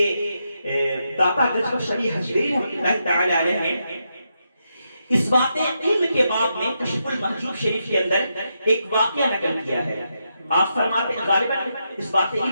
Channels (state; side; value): inverted; both; correlation -0.83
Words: داتا گجبہ شریح حجویری رحمۃ اللہ تعالی علیہ نے اس بات علم کے باب میں کشف المحجوب شریف کے اندر ایک واقعہ نقل کیا ہے۔ آپ فرماتے ہیں غالباً اس بات